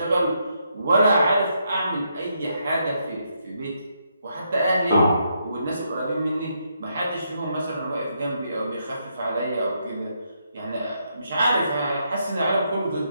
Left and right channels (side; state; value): both; inverted; correlation -0.78